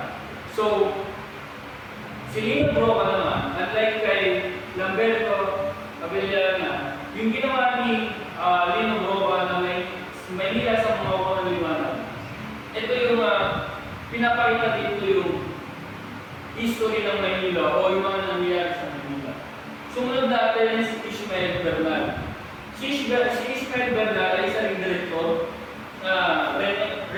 So, si Lino Broca naman, unlike kay Lamberto Avellana, yung ginawa ni Lino Broca na Maynila sa mga huko ng liwanag, ito yung pinapakita dito yung history ng Maynila o yung mga nangyayari sa Maynila. Sumunod natin si Ishmael Bernal. Si Ishmael Bernal ay isang director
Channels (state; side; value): identical; both; correlation 1.00